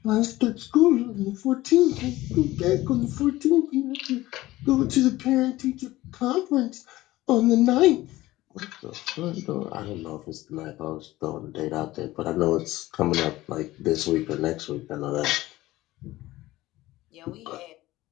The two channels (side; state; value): right; quieter; 17.3 dB